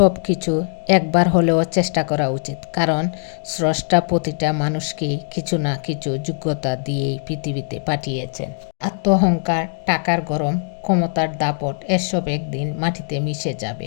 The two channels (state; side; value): silent; right; digital silence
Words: কিছু একবার হলেও চেষ্টা করা উচিত, কারণ স্রষ্টা প্রতিটা মানুষকেই কিছু না কিছু যোগ্যতা দিয়েই পৃথিবীতে পাঠিয়েছেন। আত্মঅহংকার, টাকার গরম, ক্ষমতার দাপট এসব একদিন মাটিতে মিশে